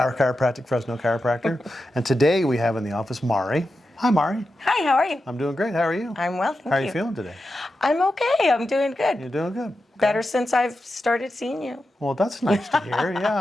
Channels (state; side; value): normal; both; correlation 0.90